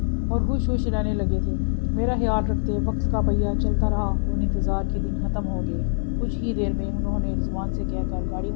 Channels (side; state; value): right; silent; digital silence